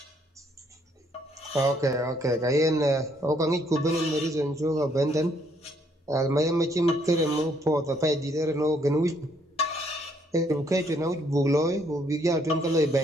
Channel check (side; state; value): both; normal; correlation 0.68